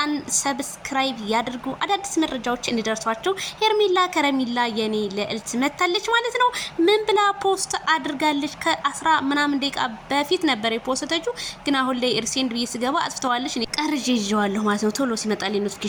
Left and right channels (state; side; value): identical; both; correlation 1.00